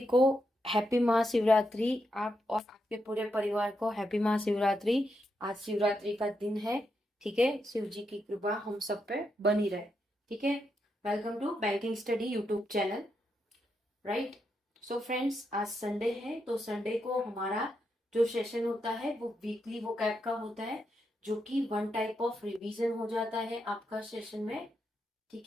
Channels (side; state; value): both; normal; correlation 0.83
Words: को हैप्पी महाशिवरात्रि। आप और आपके पूरे परिवार को हैप्पी महाशिवरात्रि। आज शिवरात्रि का दिन है, ठीक है। शिव जी की कृपा हम सब पे बनी रहे, ठीक है। Welcome to banking study YouTube channel, right. So friends, आज संडे है, तो संडे को हमारा जो सेशन होता है वो वीकली वोकैब का होता है, जो कि वन टाइप ऑफ रिवीजन हो जाता है आपका सेशन में,